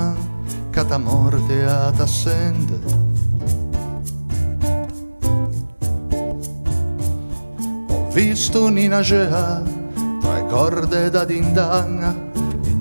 che ta morte a t'assende. Visto Nina Gea tra le corde da dindanga,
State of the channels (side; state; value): both; inverted; correlation -1.00